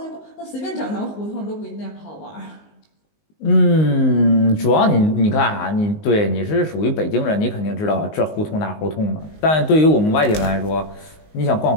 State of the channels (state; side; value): late; right; 19 ms